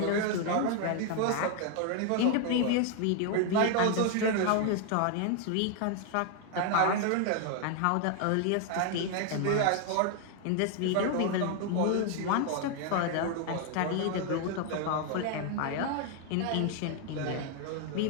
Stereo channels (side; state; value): both; different; correlation 0.00